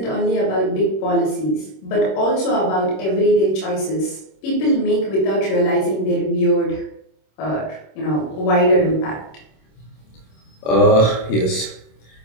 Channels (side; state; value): right; late; 26 ms